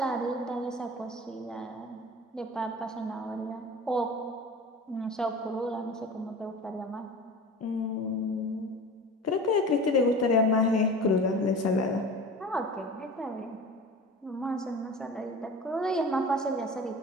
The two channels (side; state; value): both; normal; correlation 0.37